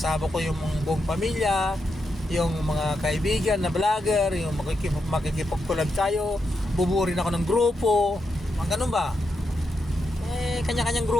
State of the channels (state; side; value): normal; both; correlation 0.84